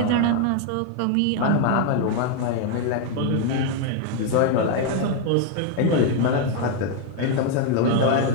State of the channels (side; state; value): both; different; correlation 0.00